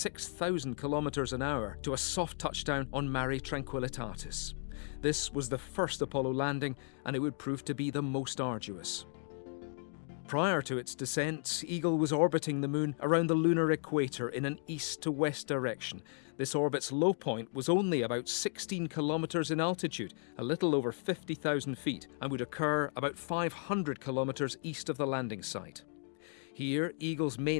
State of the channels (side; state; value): right; silent; 54 dB below the other